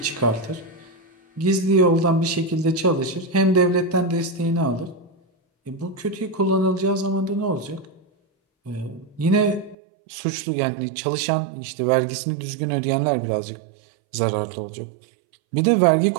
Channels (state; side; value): drops out; left; at 9.8 s